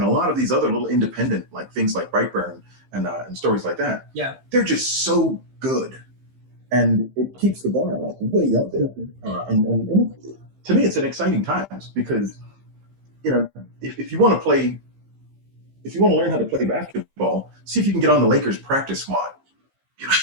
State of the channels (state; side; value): late; left; 15 ms